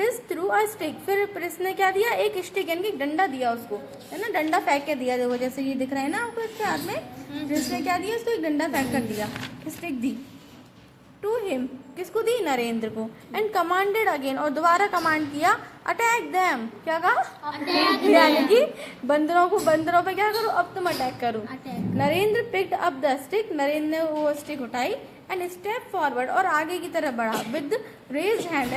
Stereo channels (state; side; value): identical; both; correlation 1.00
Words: through a stick, फिर प्रिंस ने क्या दिया, एक स्टिक यानी कि डंडा दिया उसको, है ना, डंडा फेंक के दिया। देखो जैसे ये दिख रहा है ना आपको इसके हाथ में, प्रिंस ने क्या दिया, इसको एक डंडा फेंक कर दिया, स्टिक दी। टू हिम, किसको दी, नरेंद्र को। एंड कमांडेड अगेन, और दोबारा कमांड किया, अटैक देम, क्या कहा, यानी कि बंदरों पे क्या करो, अब तुम अटैक करो। Narendra picked up the stick, Narendra ने वो स्टिक उठाई। एंड स्टेप फॉरवर्ड, और आगे की तरफ बढ़ा। विद रेज हैंड,